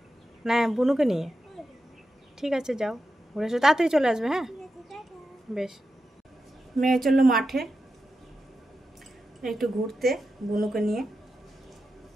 না, বুনুকে নিয়ে? ঠিক আছে, যাও ঘুরে এসো, তাড়াতাড়ি চলে আসবে। হ্যাঁ বেশ। মেয়ে চললো মাঠে একটু ঘুরতে বুনুকে নিয়ে।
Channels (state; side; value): normal; both; correlation 0.89